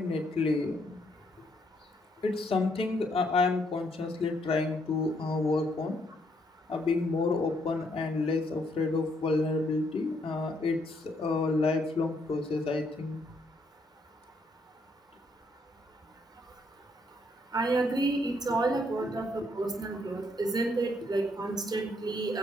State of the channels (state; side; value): normal; both; correlation 0.72